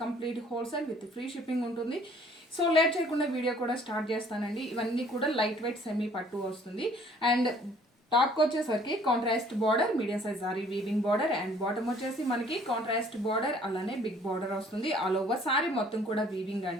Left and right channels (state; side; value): normal; both; correlation 0.57